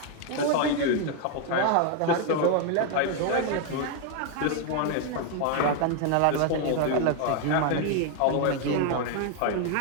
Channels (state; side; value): different; both; correlation 0.00